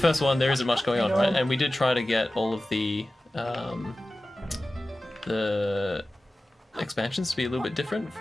one, there isn't much going on, right? And we did try to get all of the expansions to be a little bit different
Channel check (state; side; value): normal; both; correlation 0.96